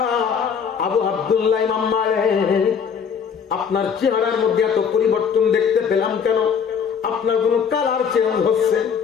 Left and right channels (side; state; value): right; quieter; 6.8 dB